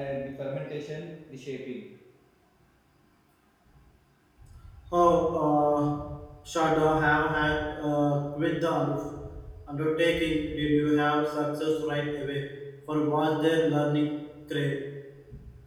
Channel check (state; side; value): identical; both; correlation 1.00